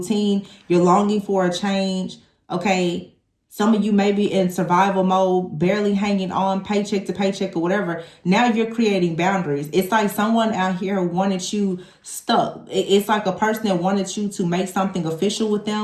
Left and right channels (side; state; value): both; identical; correlation 1.00